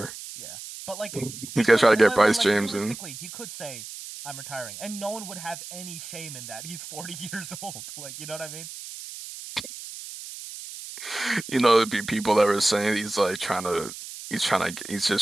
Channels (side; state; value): right; noise; hiss, 12 dB below the sound